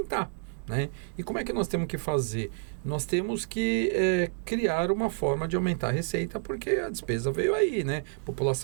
Né? E como é que nós temos que fazer? Nós temos que criar uma forma de aumentar a receita, porque a despesa veio aí, né? A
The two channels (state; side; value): silent; left; digital silence